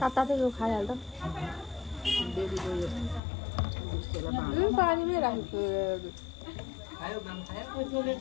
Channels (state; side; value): drops out; right; at 3.2 s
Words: खाइहाल्छ। पानीमै राखेको